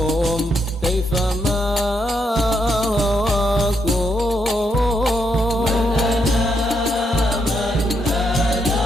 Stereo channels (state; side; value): normal; both; correlation 0.78